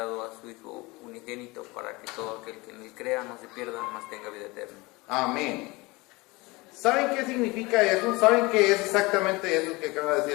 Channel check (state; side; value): quieter; right; 23.6 dB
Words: a su Hijo unigénito para que todo aquel que en él crea no se pierda, mas tenga vida eterna. Amén. ¿Saben qué significa eso? ¿Saben qué es exactamente eso que acaba de